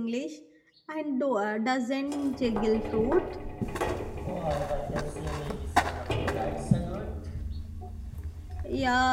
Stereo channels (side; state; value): both; identical; correlation 1.00